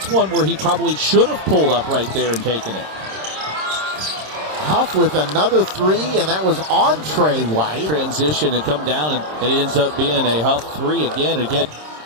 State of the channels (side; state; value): left; late; 26 ms